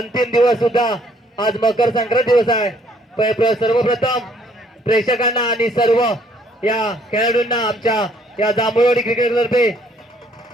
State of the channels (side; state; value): both; normal; correlation 0.64